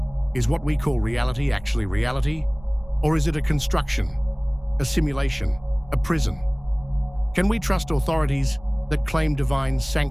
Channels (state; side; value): noise; right; rumble, 21 dB below the sound